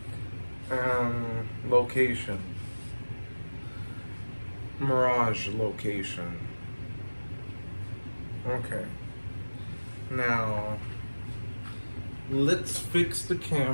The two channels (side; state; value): both; inverted; correlation -1.00